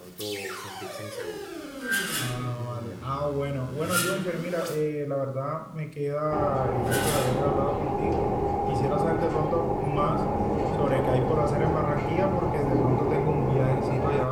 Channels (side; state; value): both; identical; correlation 1.00